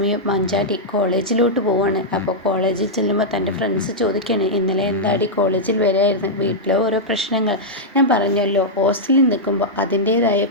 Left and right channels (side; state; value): both; normal; correlation -0.07